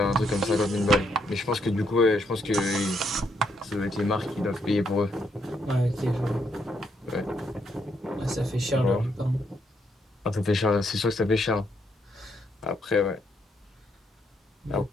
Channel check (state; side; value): normal; both; correlation 0.75